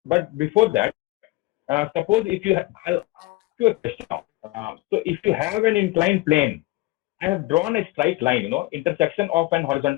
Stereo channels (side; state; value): right; quieter; 19.8 dB